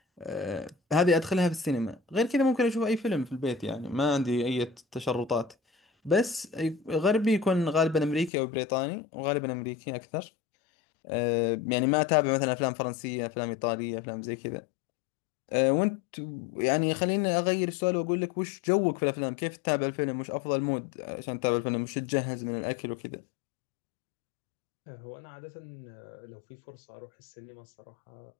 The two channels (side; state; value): right; drops out; at 8.3 s